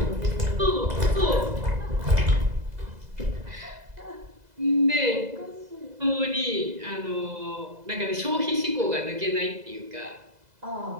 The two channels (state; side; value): late; left; 2.0 ms